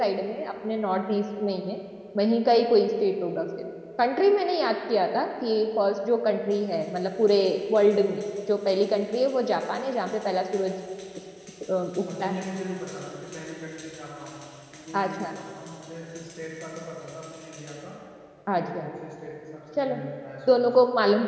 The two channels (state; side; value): identical; both; correlation 1.00